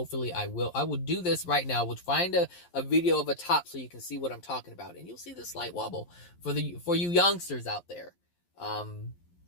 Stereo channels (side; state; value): right; late; 11 ms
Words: I will do this right now. We'll find a video of a top so you can see what I'm talking about, and you'll see the slight wobble for you youngsters out there.